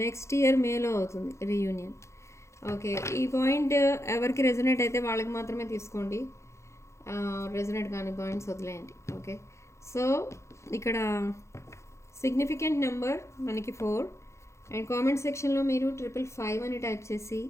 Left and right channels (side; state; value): right; late; 0.14 ms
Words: నెక్స్ట్ ఇయర్ మేలో అవుతుంది రీయూనియన్. ఓకే, ఈ పాయింట్ ఎవరికి రెజొనేట్ అయితే వాళ్ళకి మాత్రమే తీసుకోండి, రెజొనేట్ కాని పాయింట్స్ వదిలేయండి. ఓకే, సో ఇక్కడ సిగ్నిఫికెంట్ నెంబర్ మనకి 4. అండ్ కామెంట్ సెక్షన్లో మీరు 555 అని టైప్ చేసి